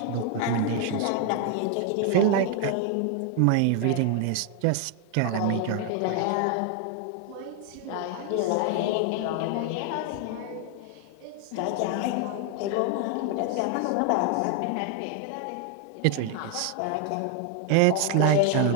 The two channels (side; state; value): both; different; correlation 0.00